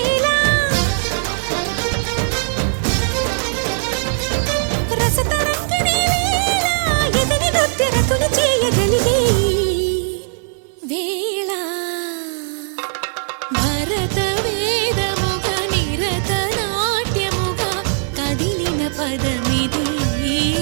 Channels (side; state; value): left; silent; 66 dB below the other